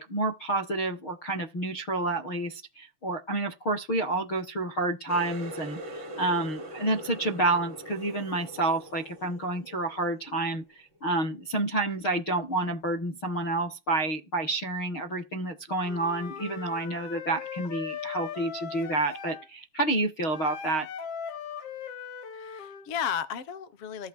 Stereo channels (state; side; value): late; right; 6.5 ms